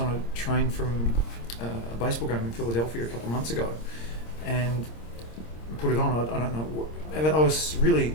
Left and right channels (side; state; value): right; late; 26 ms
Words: a train from a baseball game in Philadelphia a couple of months ago, and put it on. I don't know. I was